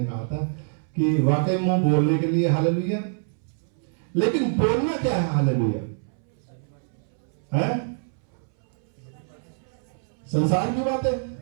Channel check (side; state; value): left; silent; 61 dB below the other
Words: कहा था कि वाकई मुंह बोलने के लिए। हालेलुया, लेकिन बोलना क्या है? हालेलुया है संसार की बातें।